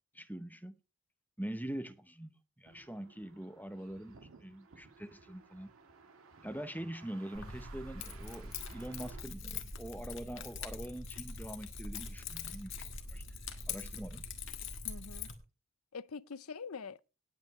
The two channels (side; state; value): both; normal; correlation 0.69